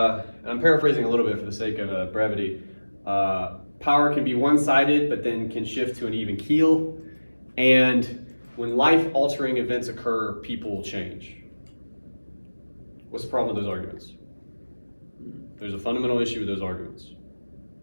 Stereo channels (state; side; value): inverted; both; correlation -1.00